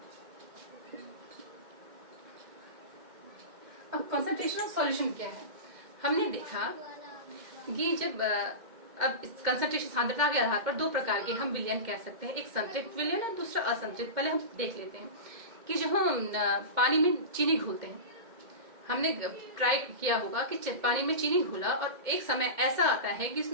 अब कंसंट्रेशन ऑफ सॉल्यूशन क्या है, हमने देखा कि जब अब कंसंट्रेशन सांद्रता के आधार पर दो प्रकार के हम विलयन कह सकते हैं, एक संतृप्त विलयन और दूसरा असंतृप्त। पहले हम देख लेते हैं कि जब हम पानी में चीनी घोलते हैं, हमने ट्राई किया होगा कि पानी में चीनी घोला और एक समय ऐसा आता है कि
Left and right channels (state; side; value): late; left; 2.1 ms